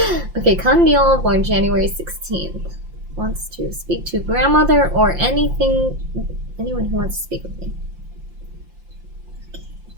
Okay, Kandil, born January 16th. Wants to speak to grandmother or anyone who wants to speak with me.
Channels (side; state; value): left; late; 5.7 ms